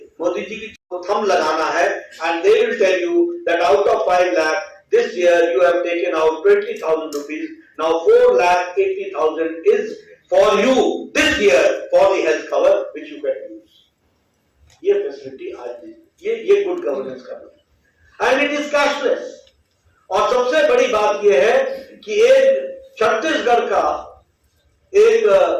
मोदी जी की थंब लगाना है and they will tell you that out of 5 lakh this year you have taken out 20,000 rupees. Now 4,80,000 is for you this year for the health cover which you can use. ये फैसिलिटी आज ये गुड गवर्नेंस का है एंड इट इज कैशलेस. और सबसे बड़ी बात यह है कि एक छत्तीसगढ़ का एक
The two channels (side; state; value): both; identical; correlation 1.00